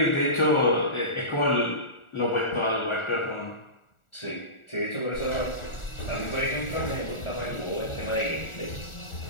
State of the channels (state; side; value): late; right; 1.4 ms